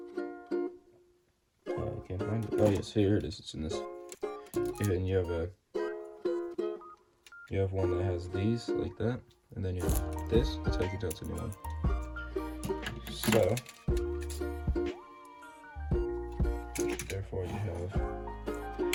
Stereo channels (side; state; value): both; identical; correlation 1.00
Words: I can't find it. Oh yes, here it is. It's in this. And you have one that has these like that, and then you have this. That's how you can tell it's a new one. So